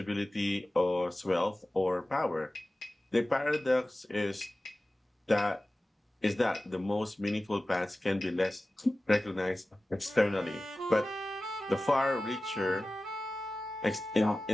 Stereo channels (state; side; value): normal; both; correlation 0.96